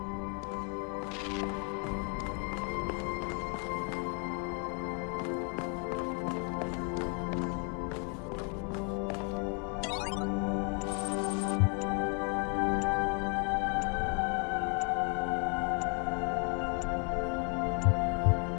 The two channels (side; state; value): right; quieter; 37.4 dB